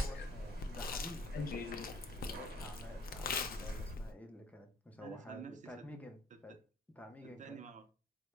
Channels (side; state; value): both; normal; correlation 0.56